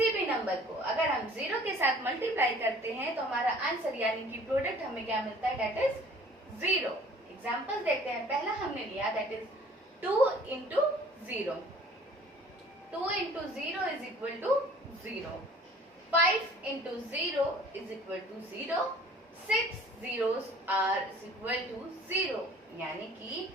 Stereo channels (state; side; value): normal; both; correlation 0.51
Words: भी नंबर को अगर हम 0 के साथ मल्टीप्लाई करते हैं तो हमारा आंसर यानी कि प्रोडक्ट हमें क्या मिलता है? That is 0। एग्जांपल देखते हैं। पहला हमने लिया that is 2 into 0। 2 into 0 is equal to 0। 5 into 0 is equal to 0. 6 zeros are is equal to 0. यानी कि